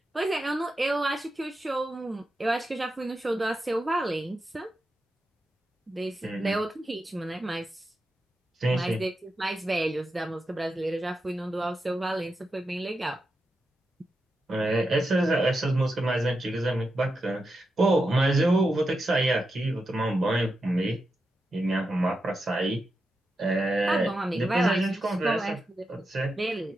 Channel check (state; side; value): normal; both; correlation 0.88